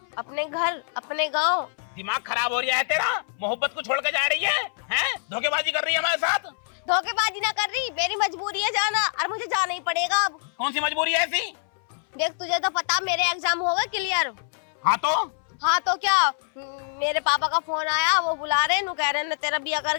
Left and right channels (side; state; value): right; silent; 60 dB below the other